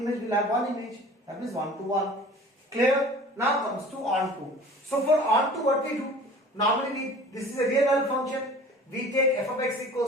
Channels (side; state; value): both; normal; correlation 0.44